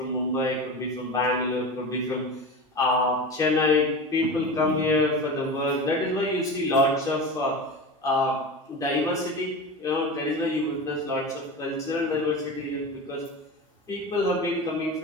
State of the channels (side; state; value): both; normal; correlation 0.28